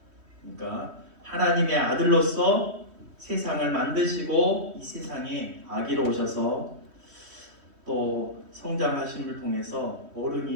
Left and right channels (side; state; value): left; late; 3.1 ms